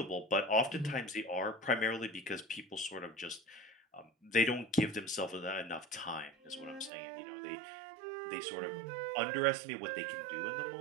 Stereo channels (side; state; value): left; drops out; at 6.9 s